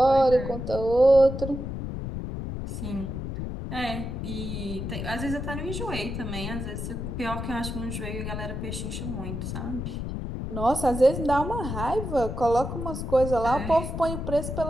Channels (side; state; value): left; noise; rumble, 5 dB below the sound